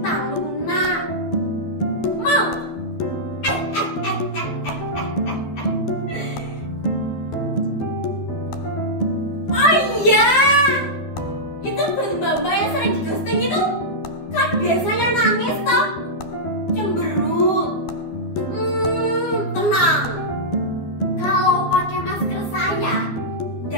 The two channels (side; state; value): right; late; 12 ms